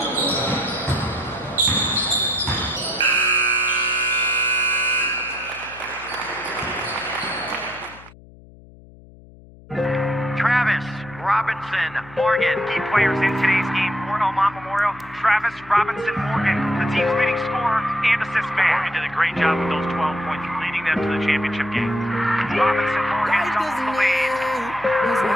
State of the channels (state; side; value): noise; left; hum, 22 dB below the sound